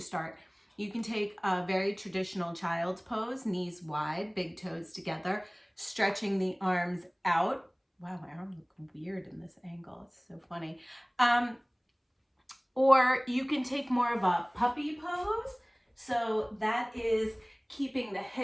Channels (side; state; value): both; identical; correlation 1.00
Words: start. You can take a very traditional child's pose, knees wide, big toes together, stretching the arms out. Wow, my arms look weird in this angle. It's so funny. Or you can take more of a puppy pose. So that is keeping the